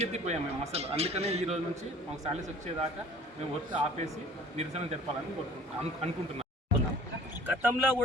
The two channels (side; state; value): both; normal; correlation 0.50